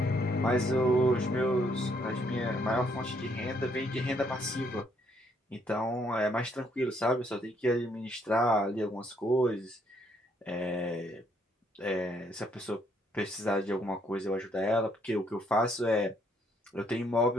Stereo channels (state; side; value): normal; both; correlation 0.70